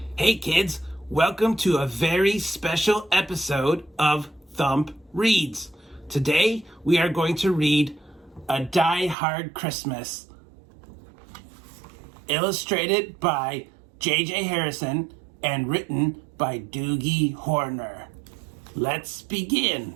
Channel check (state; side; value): drops out; left; at 9.2 s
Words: Hey kids, welcome to a very special episode of Thump Reads. Today we are going to read A Die Hard Christmas, illustrated by J.J. Harrison and written by Doogie Horner. Let's begin.